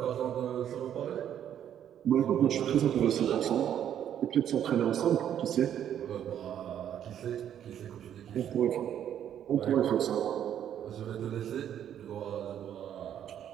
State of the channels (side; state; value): left; quieter; 10.0 dB